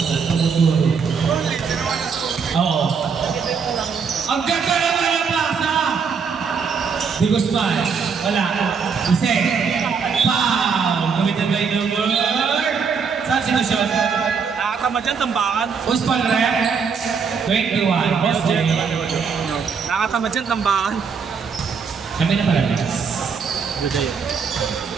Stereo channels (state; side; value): quieter; left; 5.9 dB